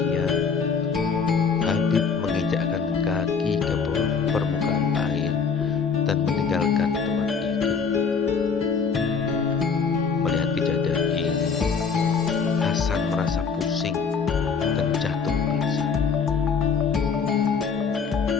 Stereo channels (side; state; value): right; quieter; 5.7 dB